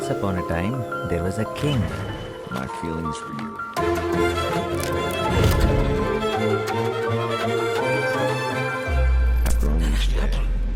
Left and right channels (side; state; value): both; identical; correlation 1.00